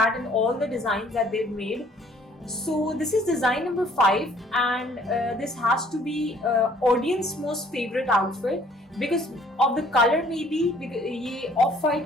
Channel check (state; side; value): normal; both; correlation 0.59